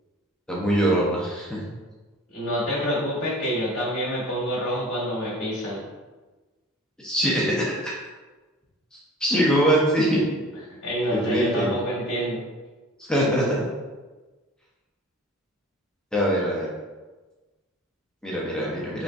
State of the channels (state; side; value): normal; both; correlation 0.44